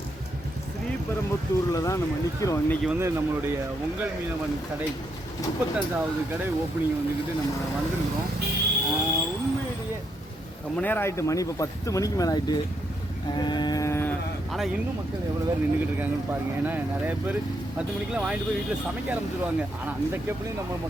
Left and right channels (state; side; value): normal; both; correlation 0.77